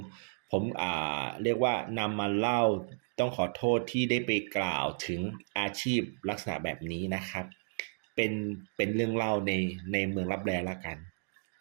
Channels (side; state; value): left; silent; digital silence